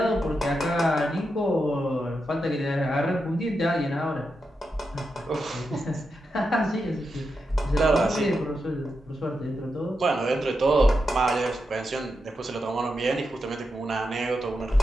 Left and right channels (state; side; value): normal; both; correlation 0.87